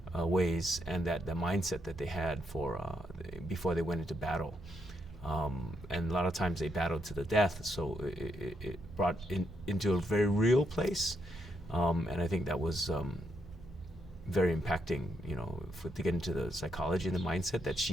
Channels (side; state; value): both; normal; correlation 0.78